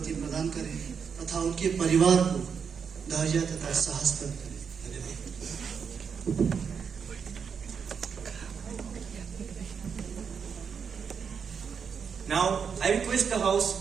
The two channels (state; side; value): quieter; left; 6.5 dB